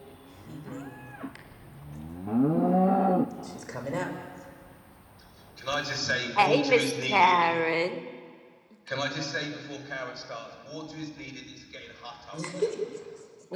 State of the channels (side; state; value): both; identical; correlation 1.00